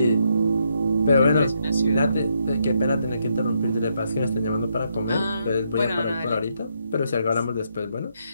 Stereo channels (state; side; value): inverted; both; correlation -0.77